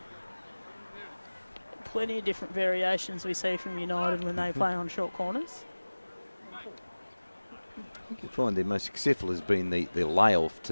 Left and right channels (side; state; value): both; inverted; correlation -1.00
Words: Plenty of different variations we see from United when they play on short corners. I think you find their most successful has been the layoff